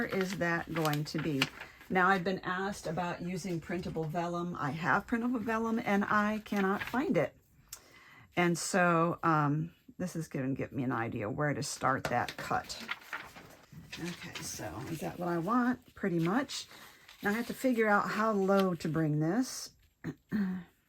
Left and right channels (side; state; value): both; identical; correlation 1.00